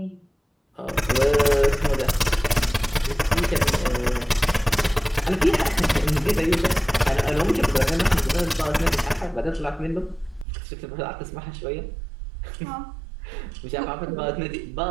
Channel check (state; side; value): drops out; left; at 10.5 s